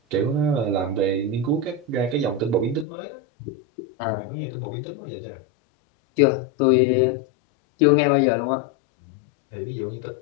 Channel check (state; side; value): drops out; right; at 2.9 s